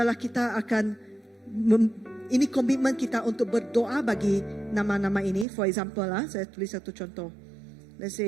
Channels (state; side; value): drops out; left; at 5.5 s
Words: kita akan ini komitmen kita untuk berdoa bagi nama-nama ini. For example, saya tulis satu contoh. Let's